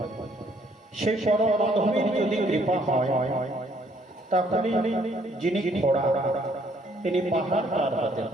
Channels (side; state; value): both; normal; correlation 0.65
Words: সেই পরম মাধবের যদি কৃপা হয় তাহলে যিনি ঘোড়া তিনি পাহাড় পার হতে